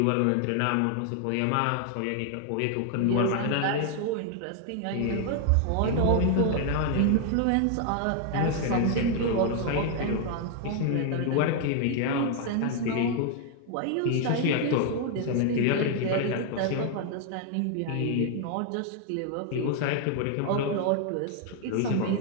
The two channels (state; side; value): different; both; correlation 0.00